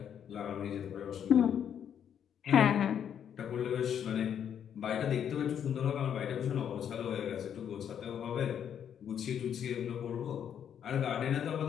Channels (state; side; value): quieter; right; 8.8 dB